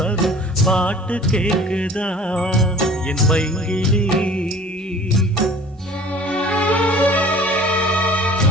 வரும் பாட்டு கேக்குதா என் பைங்கிளி.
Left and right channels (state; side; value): normal; both; correlation 0.47